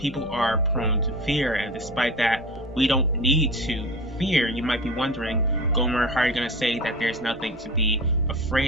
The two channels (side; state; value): both; normal; correlation 0.32